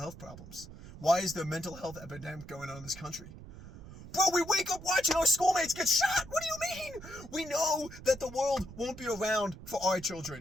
problems? Why is there a mental health epidemic going on in this country? Bro, we wake up watching our schoolmates get shot. What do you mean? We know that the world won't be around for our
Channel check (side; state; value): right; noise; rumble, 15 dB below the sound